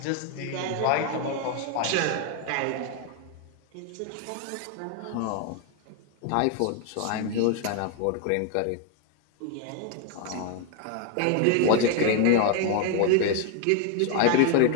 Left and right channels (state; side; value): different; both; correlation 0.01